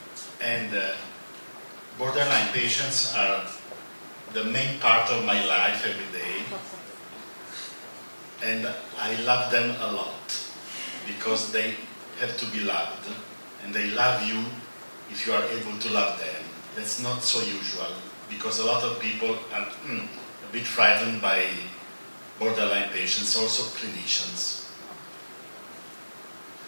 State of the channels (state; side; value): inverted; both; correlation -1.00